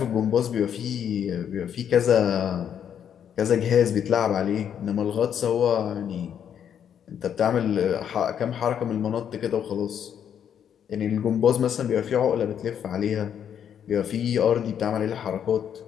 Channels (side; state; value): right; quieter; 8.8 dB